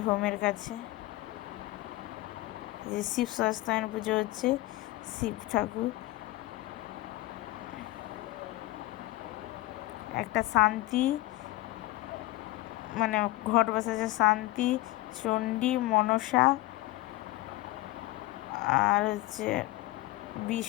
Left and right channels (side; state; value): right; quieter; 18.5 dB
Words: হোমের কাছে। যে শিব সস্তায়ন পুজো হচ্ছে, শিব ঠাকুর। একটা শান্তি, মানে ঘট বসেছে শান্তি, চণ্ডী, মনসা, আর হচ্ছে